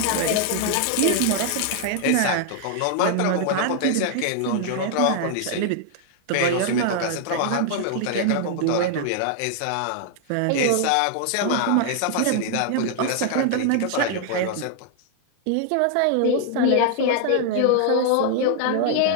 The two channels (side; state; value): both; different; correlation 0.00